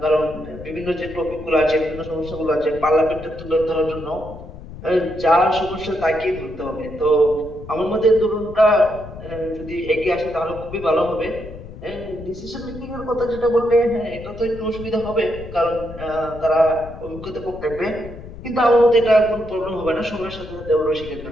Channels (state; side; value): noise; left; rumble, 14 dB below the sound